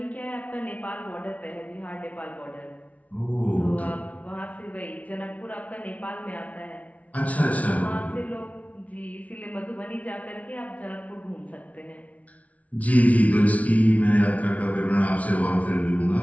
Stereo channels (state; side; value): late; right; 0.068 ms